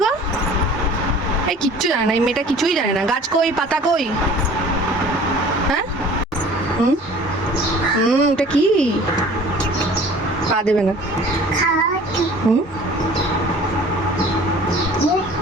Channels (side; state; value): both; normal; correlation 0.47